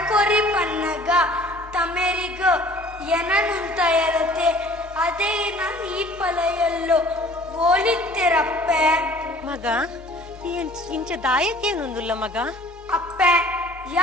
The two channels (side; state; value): both; normal; correlation 0.51